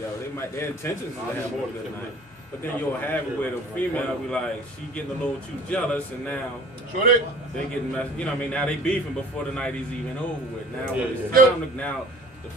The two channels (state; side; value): normal; both; correlation 0.48